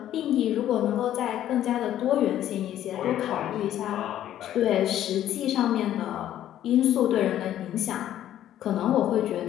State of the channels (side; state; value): right; quieter; 11.9 dB